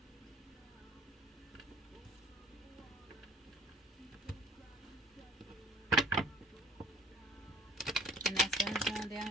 And that sun's going down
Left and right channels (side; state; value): both; normal; correlation 0.53